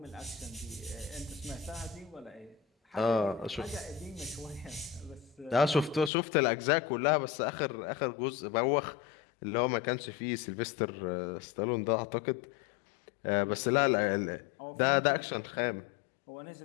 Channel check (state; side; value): drops out; right; at 6.1 s